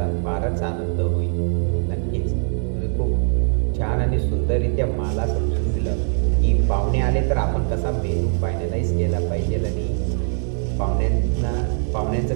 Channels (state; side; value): silent; left; 58 dB below the other